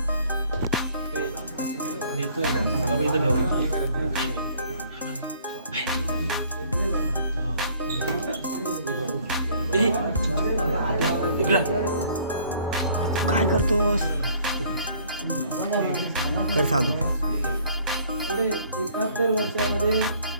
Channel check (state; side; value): inverted; both; correlation -0.58